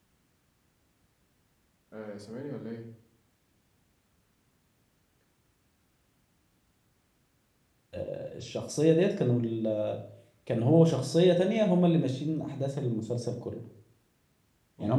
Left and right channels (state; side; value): identical; both; correlation 1.00